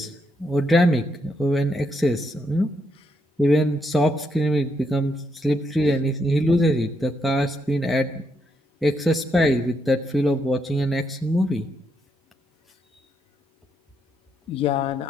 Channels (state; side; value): normal; both; correlation 0.78